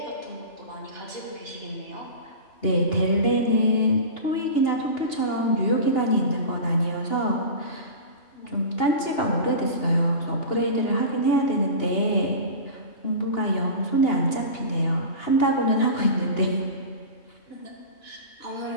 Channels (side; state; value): right; late; 2.8 ms